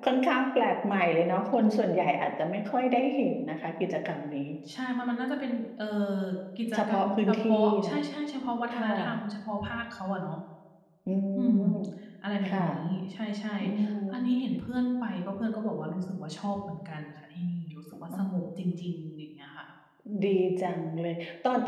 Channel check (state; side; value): identical; both; correlation 1.00